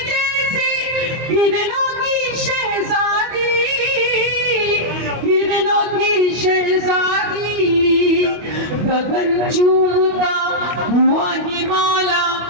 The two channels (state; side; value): late; left; 25 ms